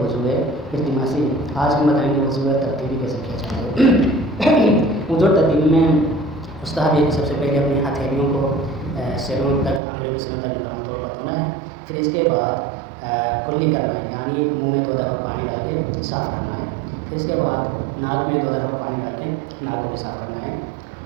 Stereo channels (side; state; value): left; drops out; at 9.8 s